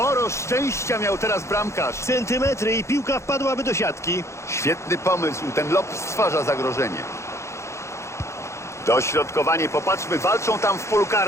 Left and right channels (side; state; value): right; late; 0.14 ms